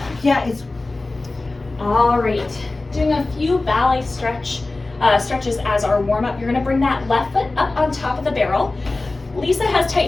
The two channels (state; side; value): quieter; right; 3.2 dB